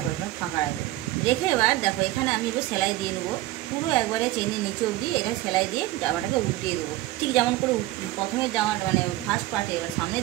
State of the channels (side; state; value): left; quieter; 16.6 dB